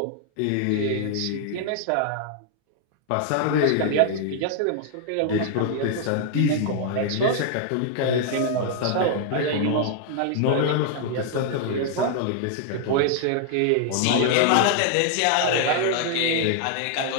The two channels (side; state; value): both; different; correlation 0.00